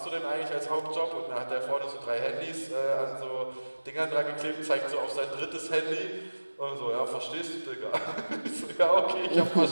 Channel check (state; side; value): inverted; both; correlation -1.00